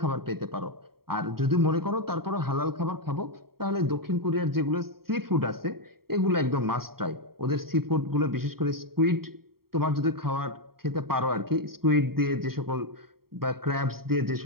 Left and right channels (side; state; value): left; late; 0.94 ms